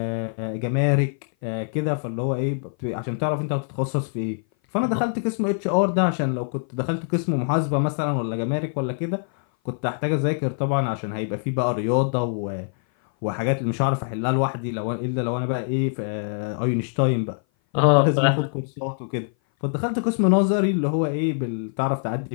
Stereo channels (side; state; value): right; silent; 57 dB below the other